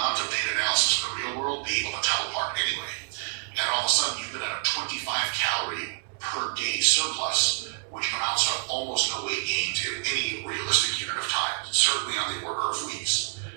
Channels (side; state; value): left; silent; 60 dB below the other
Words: of data analysis in the real world, be able to tell apart anyway. And all of a sudden, you've been at a 25 calorie per day surplus, which amounts to almost no weight gain to any realistic unit of time, certainly on the order of weeks.